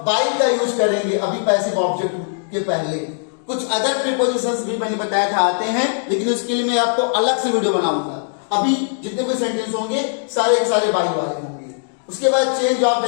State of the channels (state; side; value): silent; right; digital silence